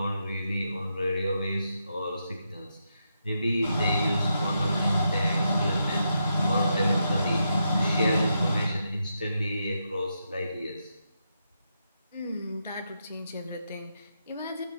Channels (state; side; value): inverted; both; correlation -0.83